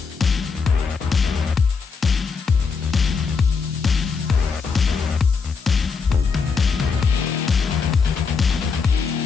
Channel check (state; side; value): quieter; right; 5.2 dB